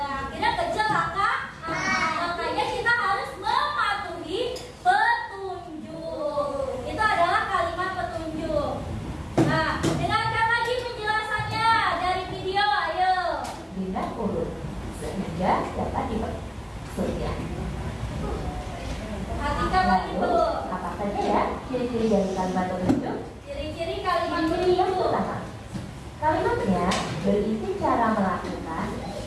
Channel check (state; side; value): identical; both; correlation 1.00